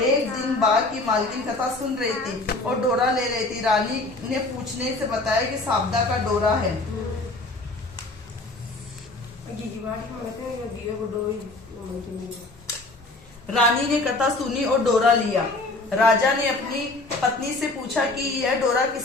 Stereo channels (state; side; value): quieter; right; 3.0 dB